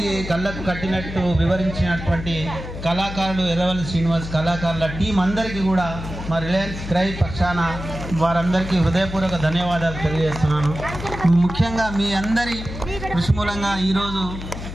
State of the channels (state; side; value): noise; left; hum, 9 dB below the sound